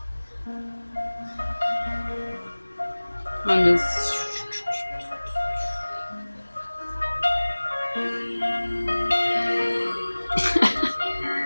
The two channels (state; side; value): inverted; both; correlation -1.00